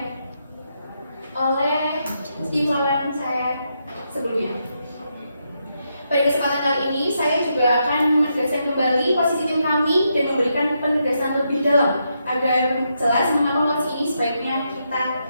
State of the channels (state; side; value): inverted; both; correlation -0.81